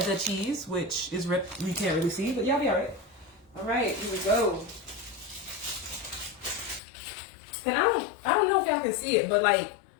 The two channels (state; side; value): drops out; right; at 6.8 s